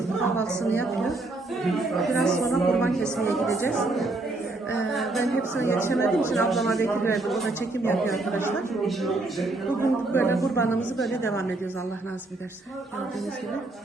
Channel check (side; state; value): left; quieter; 3.0 dB